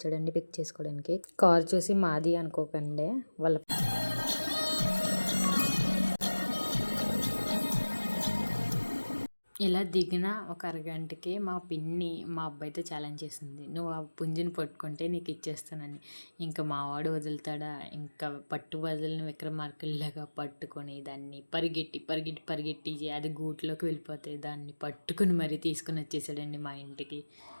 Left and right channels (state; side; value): inverted; both; correlation -1.00